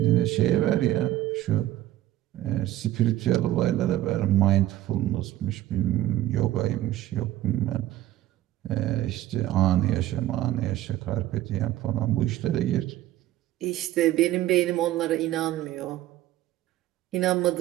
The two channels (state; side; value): quieter; left; 14.2 dB